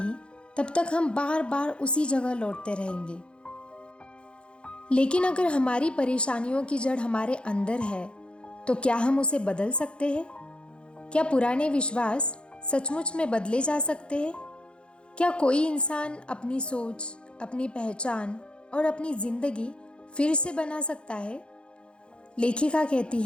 तब तक हम बार बार उसी जगह लौटते रहेंगे। लेकिन अगर हमारी परेशानियों की जड़ हमारे अंदर है, तो क्या हम उसे बदल सकते हैं? क्या पुराने विश्वास सचमुच में बदले जा सकते हैं? क्या कोई इंसान अपनी सोच, अपनी पहचान और अपनी जिंदगी फिर से बना सकता है? लेखिका कहती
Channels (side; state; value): right; late; 0.056 ms